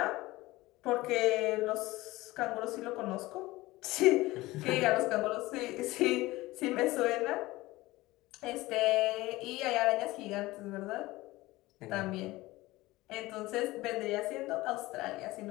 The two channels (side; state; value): right; quieter; 19.2 dB